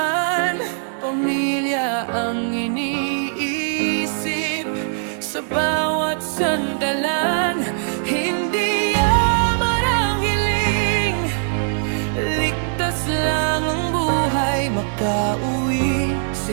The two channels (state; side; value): silent; left; digital silence